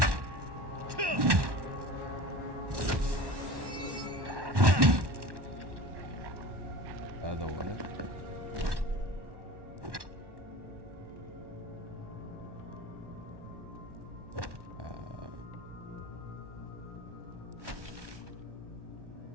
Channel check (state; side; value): late; left; 1.1 ms